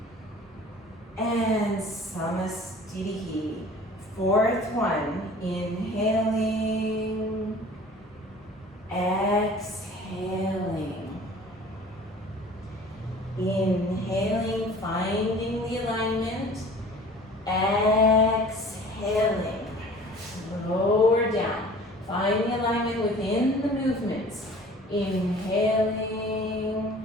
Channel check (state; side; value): normal; both; correlation 0.46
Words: And Samasthiti. Fourth one, inhaling, exhaling. Inhaling, finding the alignment. Exhaling. Lower down. Find the alignment within the movements. Inhaling,